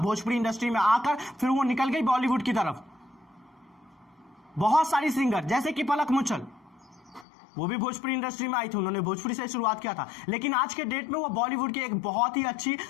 इंडस्ट्री में आकर, फिर वो निकल गई बॉलीवुड की तरफ। बहुत सारी सिंगर, जैसे कि पलक मुचल, वो भी भोजपुरी इंडस्ट्री में आई थी, उन्होंने भोजपुरी से शुरुआत किया था, लेकिन आज के डेट में वो बॉलीवुड की एक बहुत ही अच्छी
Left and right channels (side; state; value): right; drops out; at 7.2 s